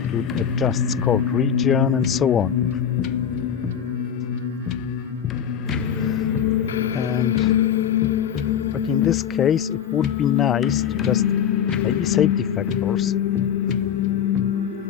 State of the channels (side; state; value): right; quieter; 8.7 dB